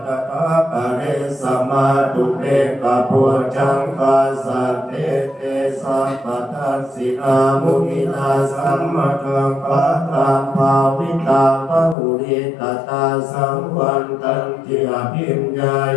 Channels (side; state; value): right; drops out; at 12.0 s